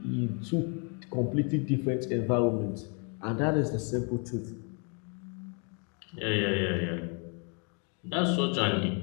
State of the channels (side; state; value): right; quieter; 37.5 dB